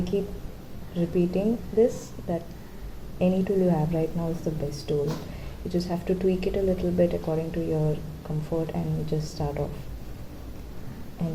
repeating this, that any tool you have right now is the best tool. You just have to tweak it a little bit according to your comfort and just start off.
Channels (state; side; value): identical; both; correlation 1.00